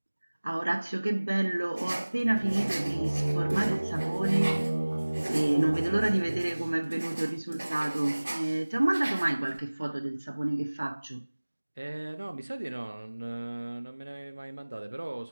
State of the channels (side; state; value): both; inverted; correlation -1.00